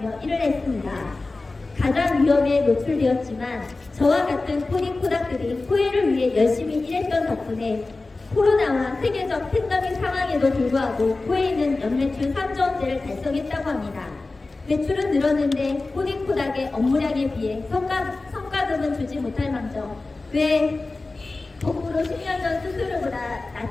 일을 했습니다. 가장 위험에 노출되었지만 저와 같은 코디프닥들이 코웨이를 위해 열심히 일했던 덕분에 코로나와 세계적 팬데믹 상황에도 불구하고 코웨이는 연매출 3조 원대를 달성했다고 합니다. 매출은 늘었는데 코디프닥의 업무량에 비해 성과급은 주지 못할 망정 왜 거꾸로 10년 전 수수료보다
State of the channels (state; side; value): quieter; right; 3.4 dB